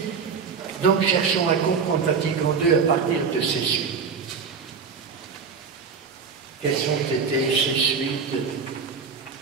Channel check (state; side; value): quieter; left; 5.7 dB